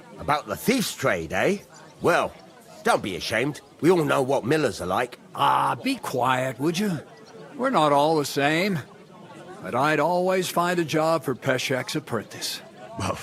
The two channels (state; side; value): identical; both; correlation 1.00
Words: About the thief's trade, eh? Well, don't be ashamed. We all know what millers are like. Ah, be quiet, would you? We're not all the same. But I'd always find a job for Peshek's apprentice. Well,